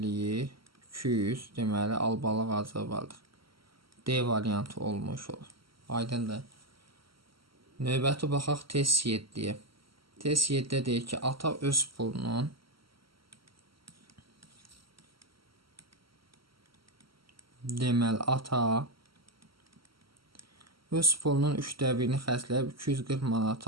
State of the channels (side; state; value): left; late; 0.74 ms